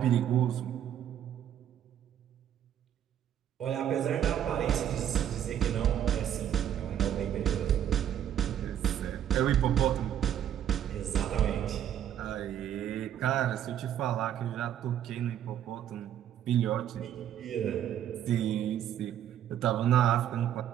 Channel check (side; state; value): left; quieter; 10.4 dB